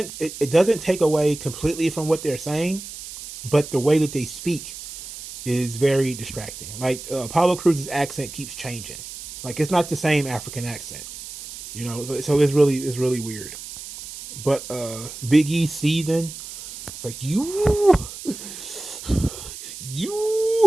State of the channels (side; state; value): right; noise; hiss, 12 dB below the sound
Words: take away completely from what they're saying, but the way that they speak is very distracting. Like Apollo Cruz's accent keeps changing. Like it's not the same African accent, you know. So it's really weird. But Big E seething like you.